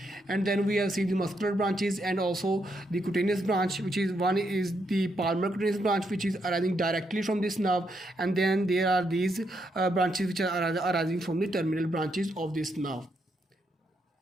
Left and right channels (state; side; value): normal; both; correlation 0.79